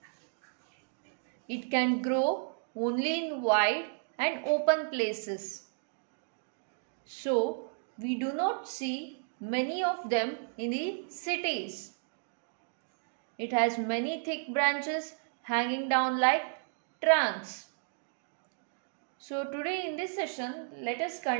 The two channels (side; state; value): left; silent; digital silence